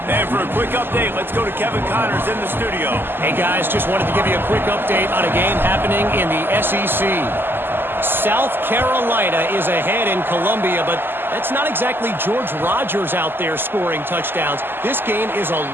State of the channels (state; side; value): late; left; 0.099 ms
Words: And for a quick update, let's go to Kevin Connors in the studio. Hey, guys, just wanted to give you a quick update on a game happening in the SEC. South Carolina is ahead in Columbia, but that's not exactly George Rogers out there scoring touchdowns. This game is a